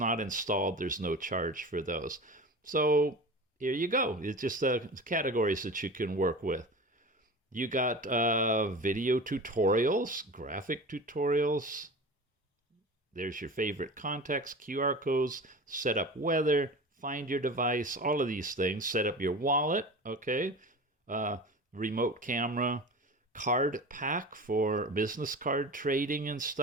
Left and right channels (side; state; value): both; normal; correlation 0.33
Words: installed, there's no charge for those. So here you go. It's just categories that you can work with. You got video tutorials, graphic tutorials. There's your favorite context, QR codes, set up weather, find your device, all of these things. Set up your wallet, okay? Remote camera, card pack for business card trading and